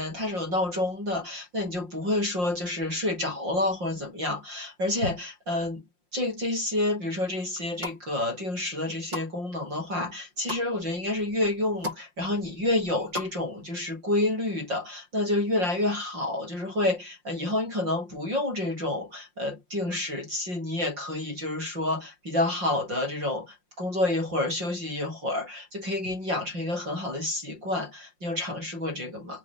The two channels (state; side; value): late; left; 5.6 ms